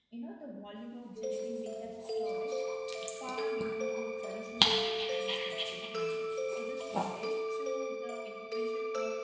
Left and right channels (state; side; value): identical; both; correlation 1.00